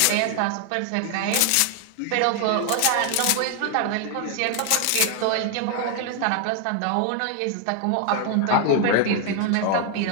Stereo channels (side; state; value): both; different; correlation 0.00